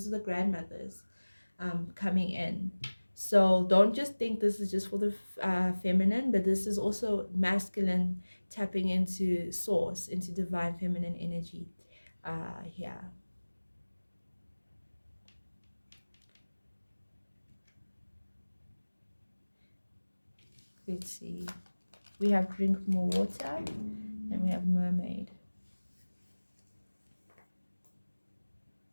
the grandmothers coming in. So don't just think this is just for the feminine, but this is also masculine tapping into source, into divine feminine energy. Yeah. Let's see. We have drink more water and we have mermaid.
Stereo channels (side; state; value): both; inverted; correlation -1.00